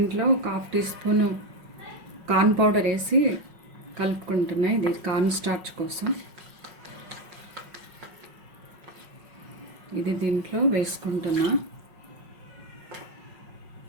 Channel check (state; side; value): late; left; 5.5 ms